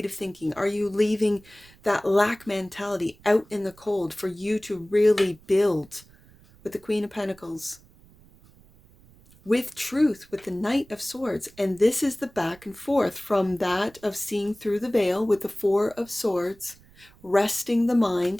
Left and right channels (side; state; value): right; noise; rumble, 26 dB below the sound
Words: thinking? Are you leaving that lack mentality out in the cold for you to really build with the Queen of Pentacles, with truth, with the Knight of Swords? And this is the back and forth from that of seeing through the veil with the Four of Swords, resting the